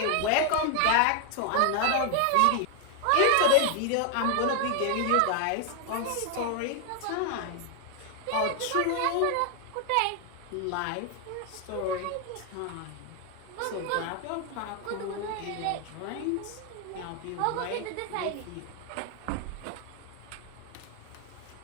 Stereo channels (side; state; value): both; different; correlation 0.00